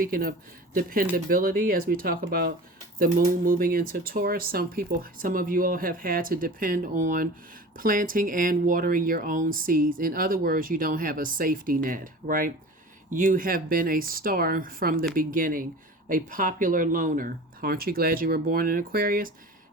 of dependability, as we talk about the moon moving into Taurus, some of you all have had to depend on planting and watering your own seeds. In other words, you don't have a safety net, right? You have been a star from the beginning, a popular loner. Aren't you glad you were born in Aquarius?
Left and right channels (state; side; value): normal; both; correlation 0.38